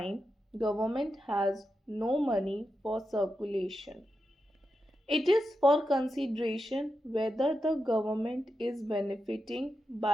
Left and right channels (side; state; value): both; normal; correlation 0.88